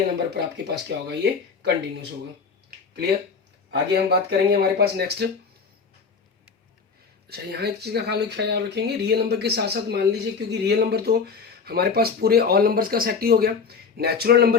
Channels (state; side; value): quieter; right; 5.4 dB